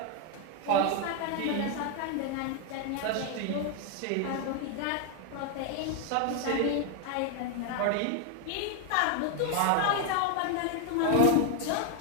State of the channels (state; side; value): different; both; correlation 0.01